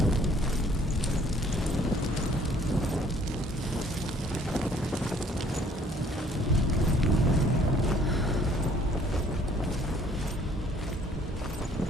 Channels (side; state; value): both; normal; correlation 0.59